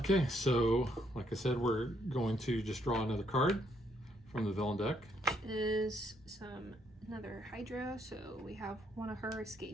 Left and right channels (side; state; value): both; normal; correlation 0.72